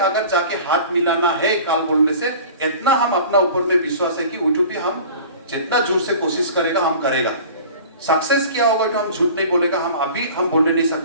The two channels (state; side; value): inverted; both; correlation -0.42